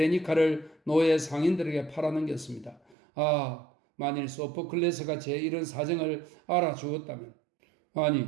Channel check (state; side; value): drops out; left; at 3.0 s